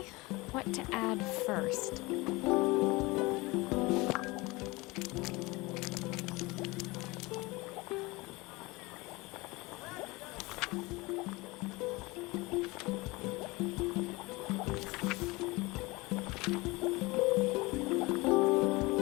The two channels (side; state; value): right; quieter; 23.2 dB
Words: What to add first?